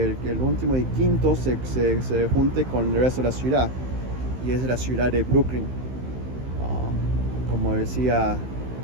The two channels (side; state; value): left; late; 15 ms